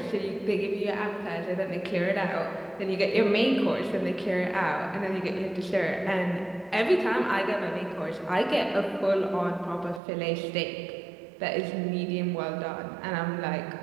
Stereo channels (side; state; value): left; drops out; at 10.0 s